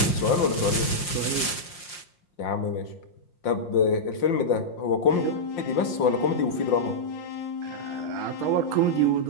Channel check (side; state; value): right; late; 5.7 ms